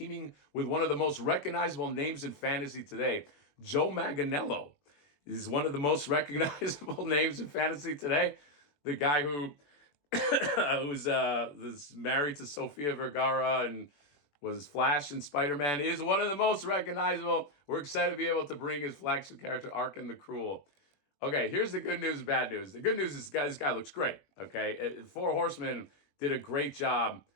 with one of the most recognizable names in fantasy today. Joe Manganiello is one of the most recognizable names in fantasy today. The guy who was married to Sofia Vergara and was Flash and Spider-Man is one of the most recognizable. We're excited to be able to bring his flagship character, Arkham the Cruel. Okay, here's the good news and bad news. The good news is this guy looks great, okay? Four Horsemen did a great job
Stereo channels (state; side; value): late; right; 21 ms